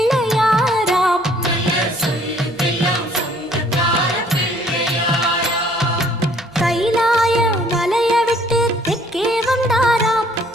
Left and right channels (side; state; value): both; normal; correlation 0.60